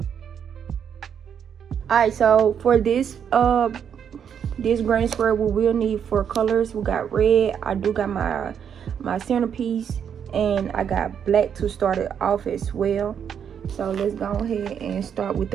Alright, so for this granny square, we will need 4 colors. We got red. I do got my centerpiece, and I got black to start it off as well. So let's go ahead and start with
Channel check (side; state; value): left; quieter; 8.0 dB